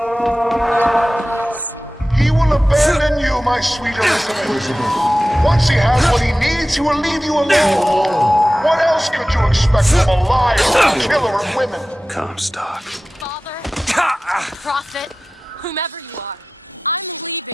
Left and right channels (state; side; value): normal; both; correlation 0.95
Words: He will abandon you, my sweet Elizabeth. Once he has what he needs, he will leave you alone. What else could you expect from a liar, a killer of women? Comstock. Father, prophet, whomever you are.